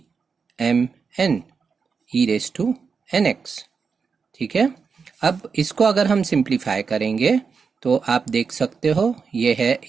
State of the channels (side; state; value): left; quieter; 5.5 dB